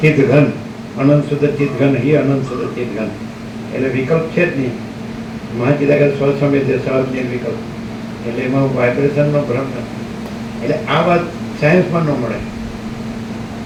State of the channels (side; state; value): both; identical; correlation 1.00